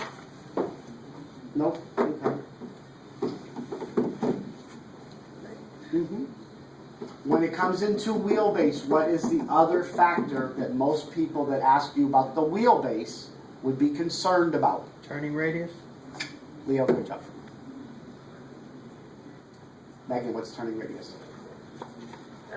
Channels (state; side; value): identical; both; correlation 1.00